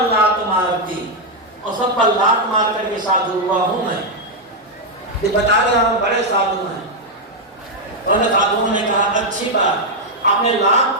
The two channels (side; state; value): both; normal; correlation -0.01